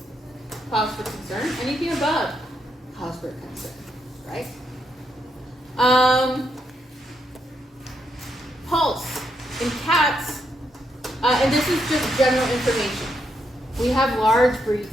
cause for concern. Anything above, cause for concern, right? Pulse. In cats, and this is just general information. We have large breed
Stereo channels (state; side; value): normal; both; correlation 0.79